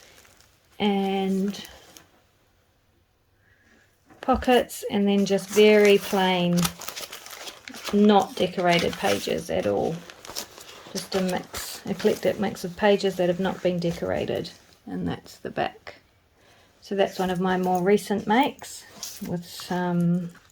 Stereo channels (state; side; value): identical; both; correlation 1.00